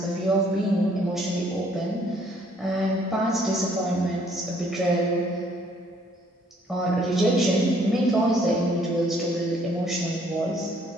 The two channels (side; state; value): both; normal; correlation 0.63